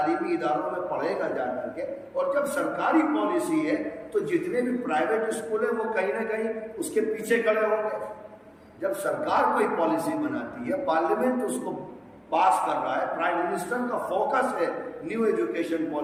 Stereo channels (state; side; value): identical; both; correlation 1.00